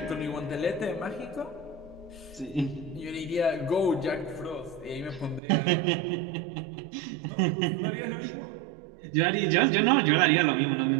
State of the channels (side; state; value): left; drops out; at 5.4 s